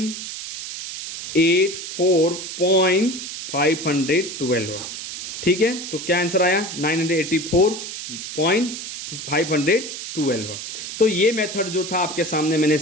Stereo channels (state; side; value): noise; right; hiss, 8 dB below the sound